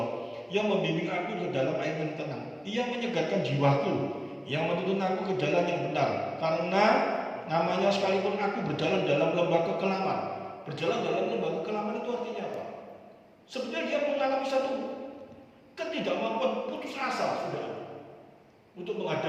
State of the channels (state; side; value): identical; both; correlation 1.00